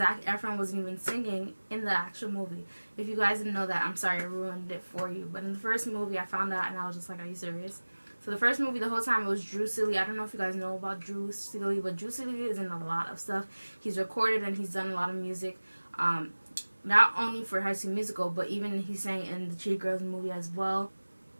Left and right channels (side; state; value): both; inverted; correlation -1.00